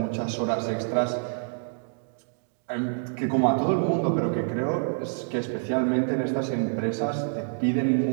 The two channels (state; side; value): silent; left; digital silence